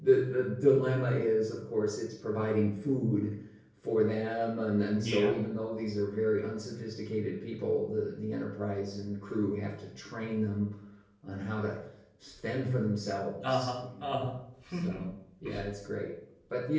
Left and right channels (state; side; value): identical; both; correlation 1.00